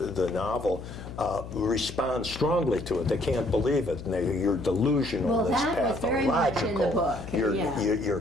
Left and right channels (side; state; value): left; noise; hum, 11 dB below the sound